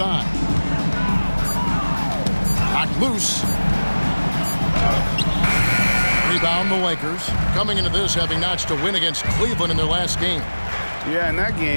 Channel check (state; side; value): inverted; both; correlation -1.00